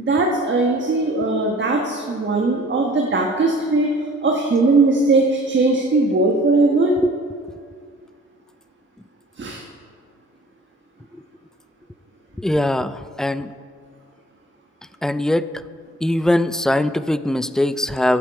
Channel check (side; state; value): both; normal; correlation 0.53